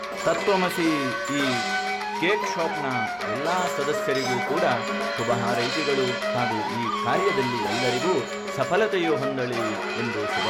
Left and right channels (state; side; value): identical; both; correlation 1.00